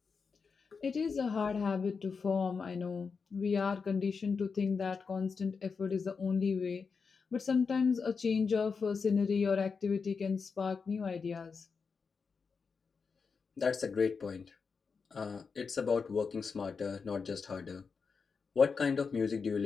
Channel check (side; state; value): right; quieter; 5.3 dB